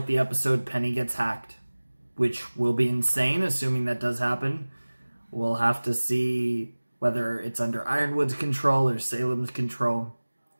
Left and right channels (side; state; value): both; inverted; correlation -1.00